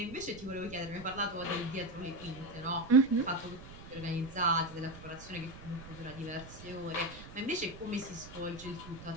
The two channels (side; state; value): right; noise; rumble, 15 dB below the sound